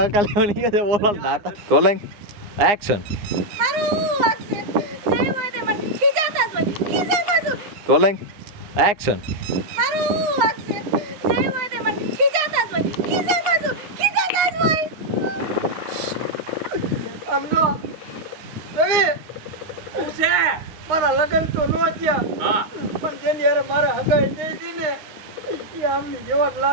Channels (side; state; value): left; late; 9.7 ms